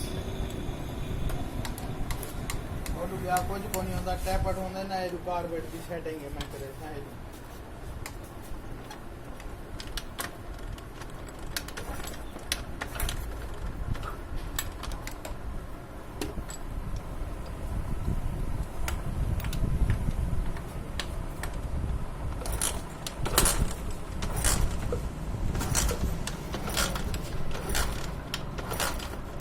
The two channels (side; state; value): both; identical; correlation 1.00